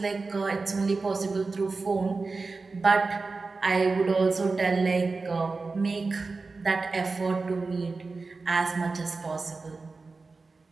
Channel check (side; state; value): left; quieter; 4.0 dB